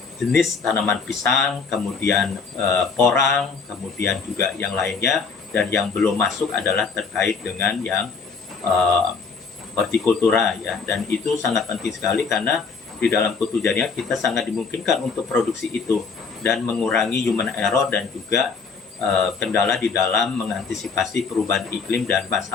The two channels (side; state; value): right; quieter; 5.0 dB